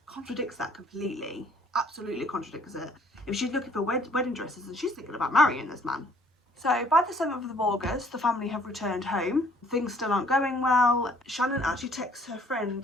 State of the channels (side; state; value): both; normal; correlation 0.59